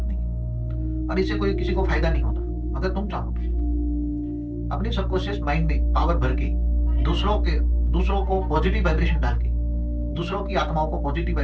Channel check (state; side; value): identical; both; correlation 1.00